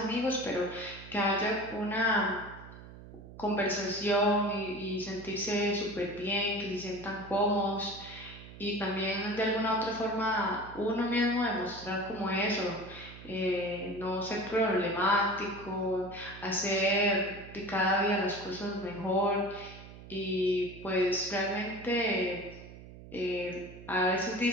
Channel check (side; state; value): right; noise; hum, 16 dB below the sound